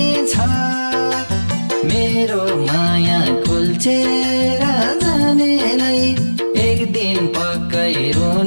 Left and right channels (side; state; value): both; inverted; correlation -1.00